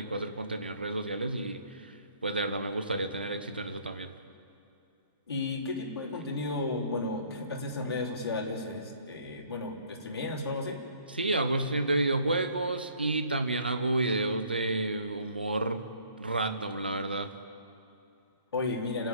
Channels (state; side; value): inverted; both; correlation -0.58